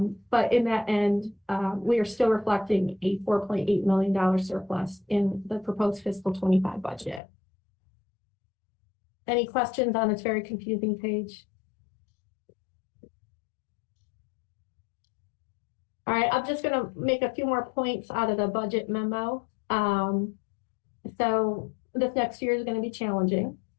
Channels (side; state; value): right; drops out; at 7.2 s